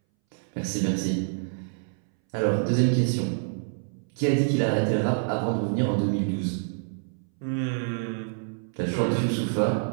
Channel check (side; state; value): left; silent; 60 dB below the other